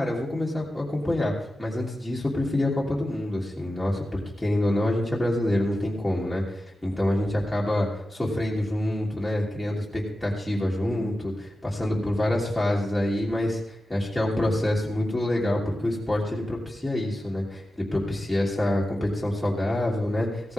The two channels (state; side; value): normal; both; correlation 0.93